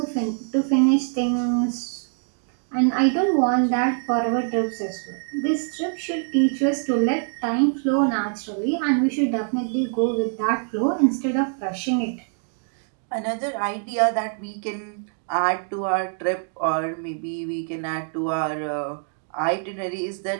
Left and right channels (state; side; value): silent; left; 58 dB below the other